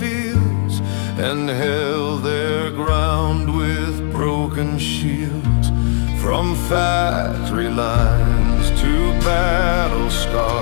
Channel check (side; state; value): right; silent; digital silence